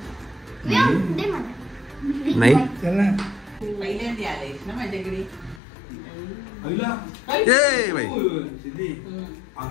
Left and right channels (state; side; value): drops out; right; at 5.6 s